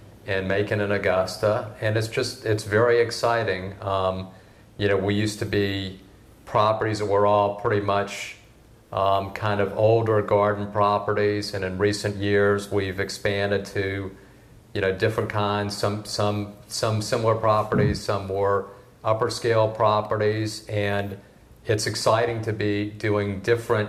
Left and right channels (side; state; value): both; identical; correlation 1.00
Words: and Macon and Augusta, and it's very exciting. We used to be properties that were all pretty much kind of older garden properties, and in recent years we've expanded to different kinds, some similar properties, some more upper scale properties, and it's exciting to be doing different